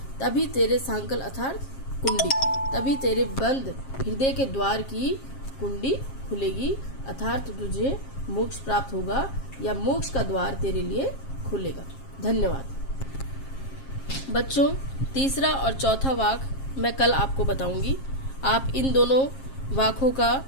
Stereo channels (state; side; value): late; right; 7.4 ms